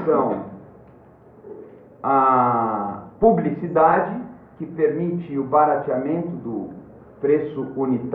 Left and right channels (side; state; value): both; identical; correlation 1.00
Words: são a publicidade, que permite o barateamento do preço